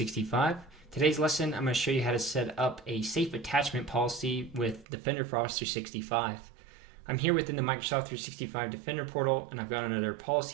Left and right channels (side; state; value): left; drops out; at 4.9 s